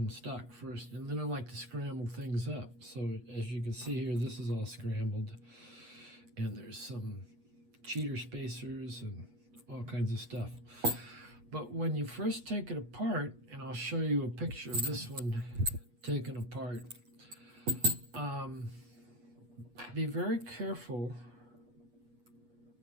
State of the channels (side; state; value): left; late; 8.3 ms